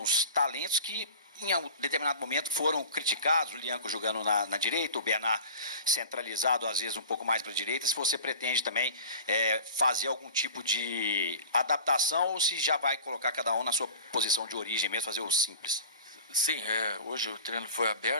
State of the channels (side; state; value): both; inverted; correlation -0.39